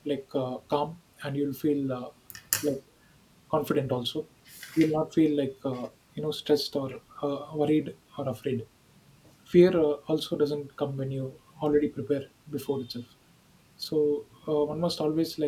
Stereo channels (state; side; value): identical; both; correlation 1.00